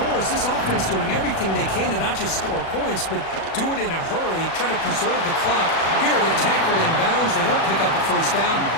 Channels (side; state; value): right; late; 36 ms